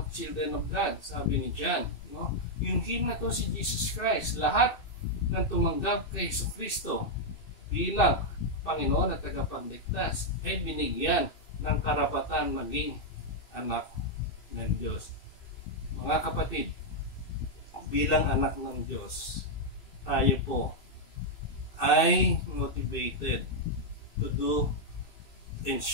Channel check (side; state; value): right; late; 2.6 ms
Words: children of God, sabi ni John. No? Yung Him na to si Jesus Christ, lahat ng tumanggap kay Jesucristo bilang Panginoon at tagapagligtas ay binigyan ng karapatan maging anak ng Diyos. Mga kapatid, bilang anak ng Diyos, tayo po ay motivated to do and